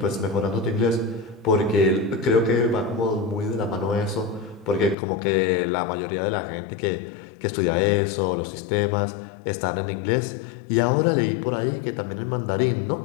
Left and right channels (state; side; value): drops out; right; at 5.0 s